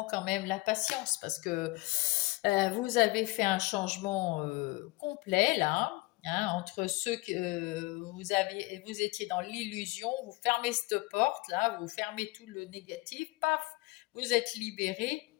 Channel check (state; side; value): quieter; right; 22.9 dB